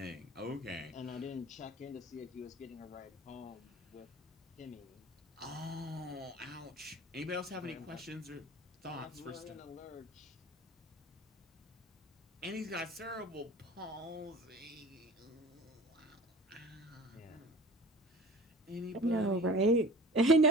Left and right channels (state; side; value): normal; both; correlation 0.41